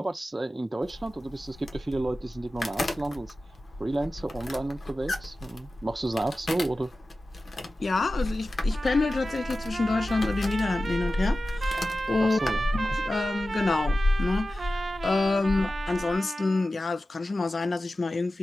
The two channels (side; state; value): both; normal; correlation 0.94